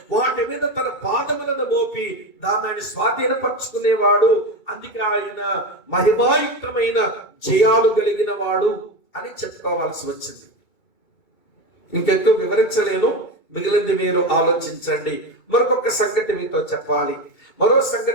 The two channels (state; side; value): late; right; 2.3 ms